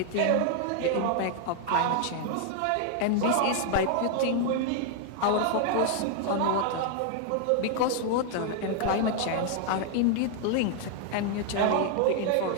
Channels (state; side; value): different; both; correlation 0.00